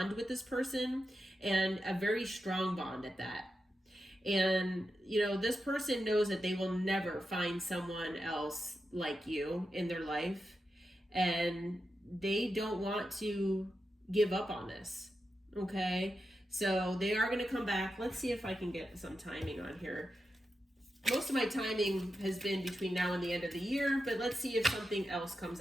with this person and a very strong bond at that. And, you know, this person knows that they will never find someone else like you in their life. And they don't want to give up on this. Okay. So they are going to come back. Let's see if I can get some timing on here. Most of my timing has been between now and the end of the year, but let's see if something else comes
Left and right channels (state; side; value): normal; both; correlation 0.89